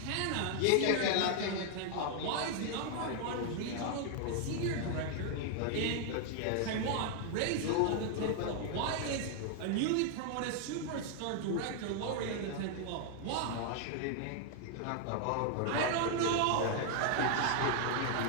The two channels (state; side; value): different; both; correlation 0.00